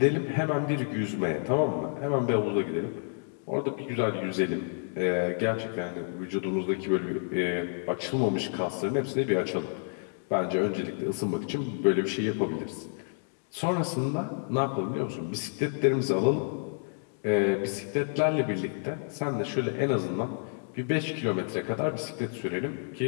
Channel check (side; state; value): right; silent; 58 dB below the other